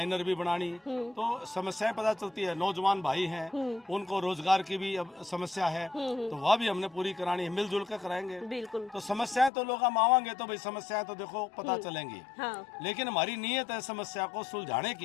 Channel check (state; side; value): drops out; right; at 9.5 s